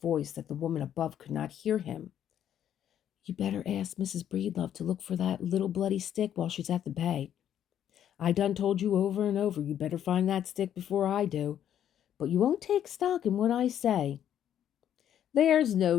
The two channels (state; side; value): quieter; right; 10.1 dB